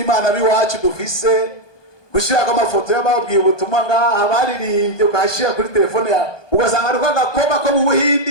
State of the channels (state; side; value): late; right; 1.2 ms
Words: biwacu dufise, gushirako amafoto y'ababwiye ubutumwa ngaha baririmbye, ukashira kuri telefone yawe, ugasanga ari kagakobwa ko mu